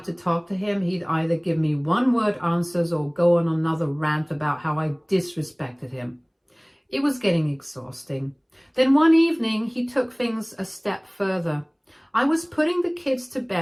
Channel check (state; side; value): identical; both; correlation 1.00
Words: to talk to him, he'd either give me one-word answers or go on another rant about how I disrespected him. It was getting exhausting. Then one evening, he took things a step further. I was putting the kids to